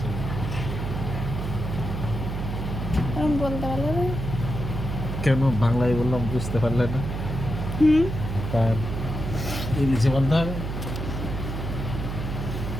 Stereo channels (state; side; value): noise; right; hum, 4 dB below the sound